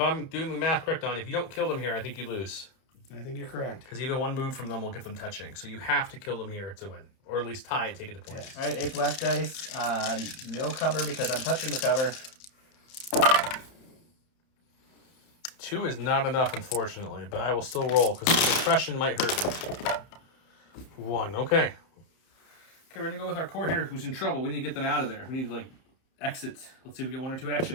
I'm doing the math correct on, if you don't kill them here, I think you lose. I think you're correct. Because even 1 move from them will get them touching. So you have to kill them here to win. Or at least tie it, take it to points. Yeah. All right, 8 black dice. No cover because I'm touching the cover. 2 is not enough, unfortunately, but I will still roll because the suppression might hurt me. 1, okay. Okay, we're going to go with our core here who's in trouble. We need to get them out of there. We need to, exit. Let's see if we get 1 or 2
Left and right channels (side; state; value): right; late; 30 ms